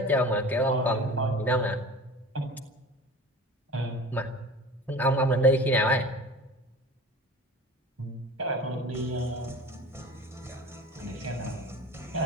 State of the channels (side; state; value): both; normal; correlation 0.39